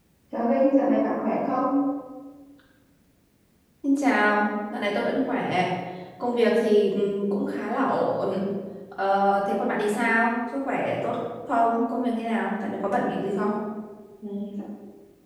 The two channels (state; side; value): identical; both; correlation 1.00